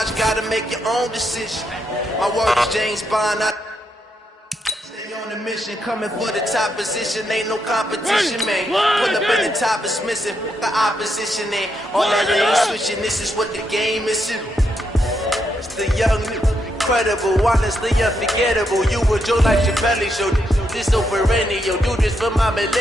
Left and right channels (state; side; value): normal; both; correlation 0.80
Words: gotta make your own decision. My word is James Bond, I stay on the mission, coming for the top position, ain't no competition, man. Pull up in the top is missing, the opposition ain't. All that lane switching, this is what the game is. It's the young, incredible, honestly unforgettable. You would Joe like Chappelle show. This over radio, do this for my